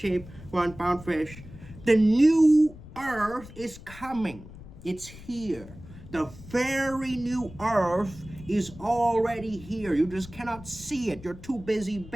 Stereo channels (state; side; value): noise; left; rumble, 17 dB below the sound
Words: 1 pound fish. The new earth is coming. It's here. The very new earth is already here. You just cannot see it. You're too busy